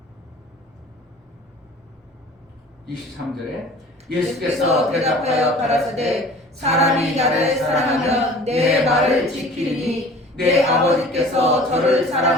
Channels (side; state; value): both; normal; correlation 0.45